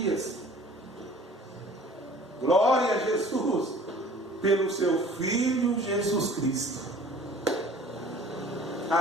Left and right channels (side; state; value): both; normal; correlation 0.48